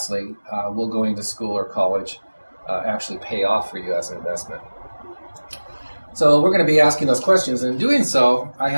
will going to school or college actually pay off for you as an investment? So we're going to be asking those questions, and in doing so, I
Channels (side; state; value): both; inverted; correlation -1.00